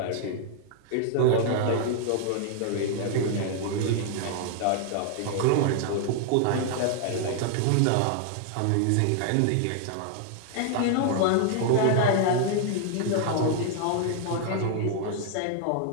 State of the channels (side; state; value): both; different; correlation 0.00